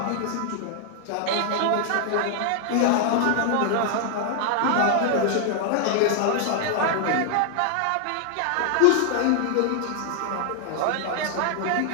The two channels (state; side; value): different; both; correlation 0.00